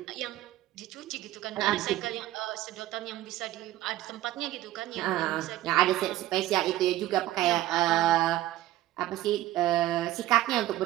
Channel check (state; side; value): quieter; left; 15.1 dB